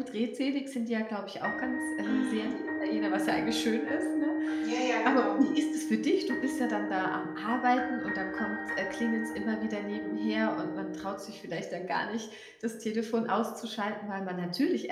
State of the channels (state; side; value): identical; both; correlation 1.00